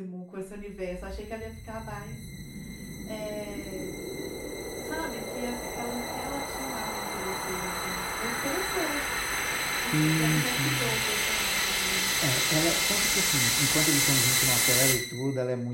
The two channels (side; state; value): both; identical; correlation 1.00